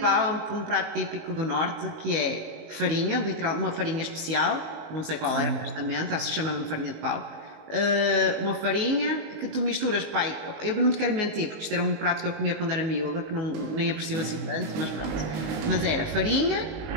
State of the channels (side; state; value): left; late; 19 ms